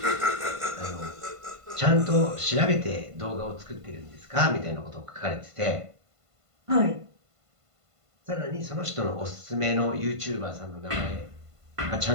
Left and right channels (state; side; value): late; left; 1.5 ms